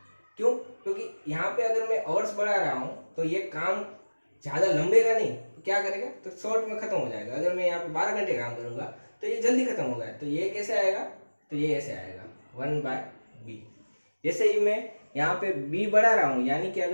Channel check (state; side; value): inverted; both; correlation -1.00